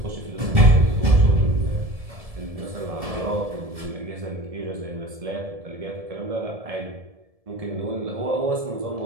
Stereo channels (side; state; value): left; late; 1.7 ms